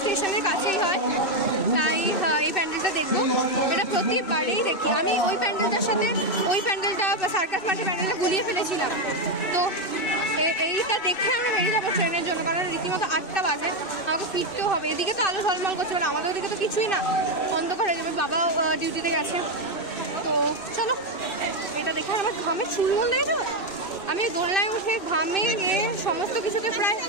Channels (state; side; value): late; right; 2.6 ms